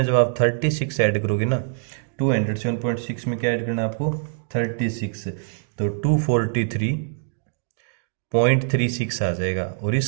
जब आप 36 ऐड करोगे ना 207.6 में क्या ऐड करना है आपको 36 तो 243.36 आ जाएगा और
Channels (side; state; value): left; silent; digital silence